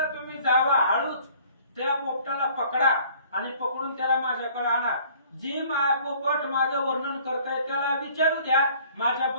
तुम्ही जावा, हळूच त्या पोपटाला पकडा आणि पकडून त्याला माझ्याकडे आणा. जी पोपट माझं वर्णन करताय त्याला विचारू द्या,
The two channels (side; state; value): both; inverted; correlation -0.55